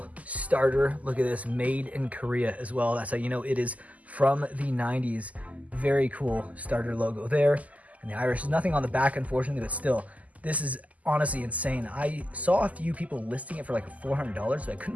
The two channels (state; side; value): late; left; 0.074 ms